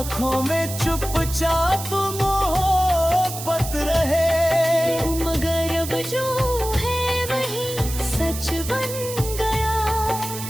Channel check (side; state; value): right; noise; hiss, 9 dB below the sound